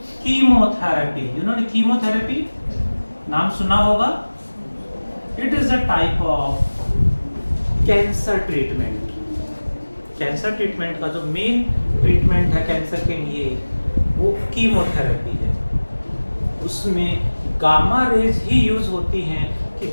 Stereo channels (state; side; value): inverted; both; correlation -1.00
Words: कीमोथेरेपी, जिन्होंने कीमोथेरेपी नाम सुना होगा, it is a type of cancer treatment. Cancer treatment का जो मेन ट्रीटमेंट है कैंसर के लिए, वो कीमोथेरेपी है। उसमें गामा रेज ही यूज होती हैं कि